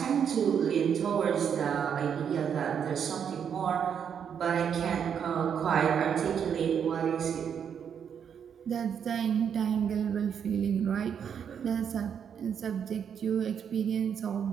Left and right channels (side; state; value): left; quieter; 7.8 dB